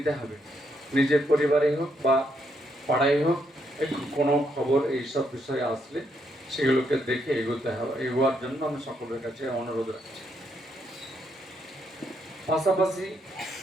হবে, নিজের পরিবারে হোক বা পাড়ায় হোক। কোনো খবর এইসব বিষয়ে আসলে সেগুলোকে দেখে এগোতে হবে, এগোয়ার জন্য আমি সকলের কাছে অনুরোধ রাখছি। পাশাপাশি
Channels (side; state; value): both; normal; correlation 0.76